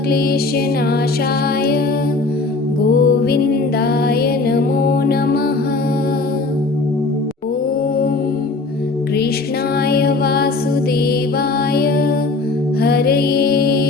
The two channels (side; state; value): right; quieter; 3.5 dB